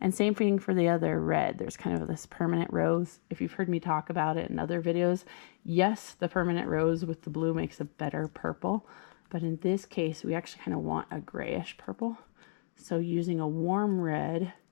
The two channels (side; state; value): right; silent; digital silence